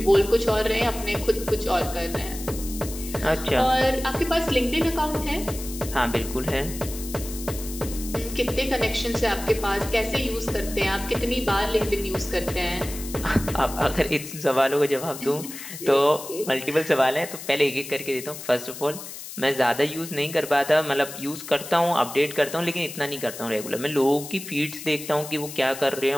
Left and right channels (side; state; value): left; noise; hiss, 11 dB below the sound